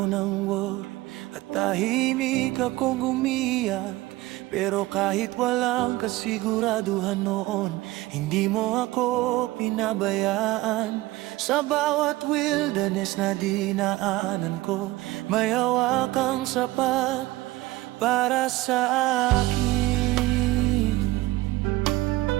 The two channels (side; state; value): left; quieter; 18.8 dB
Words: ng worry at tahimik akong umiyak. Pero kahit walang kasiguraduhan noon, hindi mo ako pinabayaan. Sa bawat wilderness na dinaanan ko, may hawak kang sapat para sa akin.